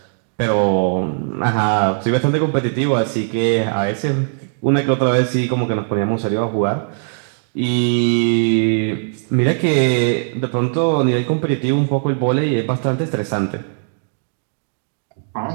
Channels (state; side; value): silent; left; digital silence